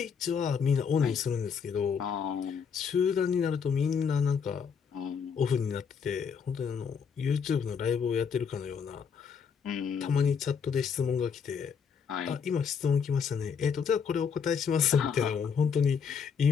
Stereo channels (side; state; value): right; quieter; 6.5 dB